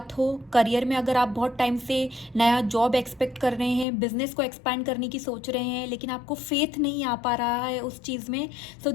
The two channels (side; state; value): right; drops out; at 3.9 s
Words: हो। करियर में अगर आप बहुत टाइम से नया जॉब एक्सपेक्ट कर रहे हैं, बिजनेस को एक्सपैंड करने की सोच रहे हैं, लेकिन आपको फेथ नहीं आ पा रहा है उस चीज़ में, सो